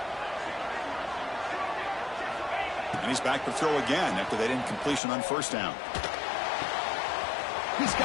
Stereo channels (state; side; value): drops out; right; at 5.0 s